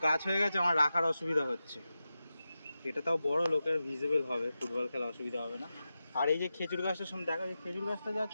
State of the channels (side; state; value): both; inverted; correlation -0.92